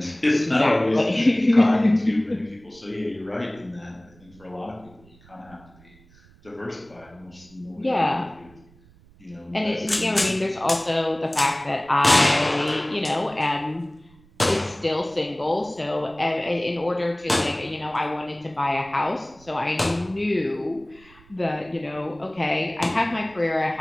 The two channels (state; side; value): noise; right; rumble, 27 dB below the sound